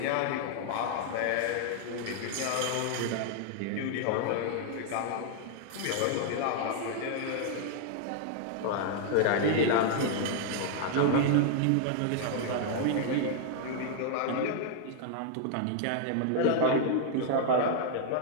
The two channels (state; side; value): different; both; correlation 0.00